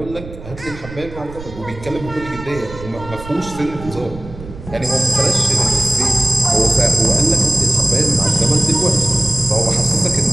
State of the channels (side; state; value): right; noise; rumble, 14 dB below the sound